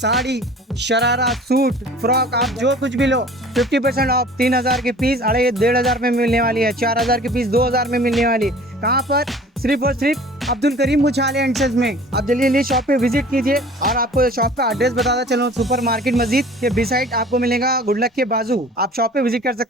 शरारा, सूट, फ्रॉक, आप जो कुछ भी लो 50% ऑफ। 3,000 के पीस 1,500 में मिलने वाली है। 4,000 के पीस 2,000 में मिलने वाली। कहाँ पर? सिर्फ और सिर्फ अब्दुल करीम उछाले एंड सन्स में। आप जल्दी शॉप पे विजिट कीजिए। और आपको शॉप का एड्रेस बताता चलो, सुपर मार्केट मस्जिद के बिसाइड आपको मिलेगा, गुडलक के बाजू। आप शॉप पे विजिट कर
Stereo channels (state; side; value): normal; both; correlation 0.46